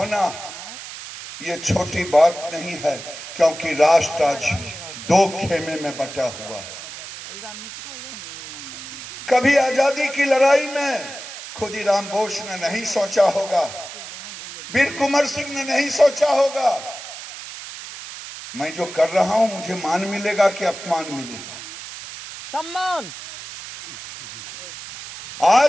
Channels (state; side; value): noise; right; hiss, 12 dB below the sound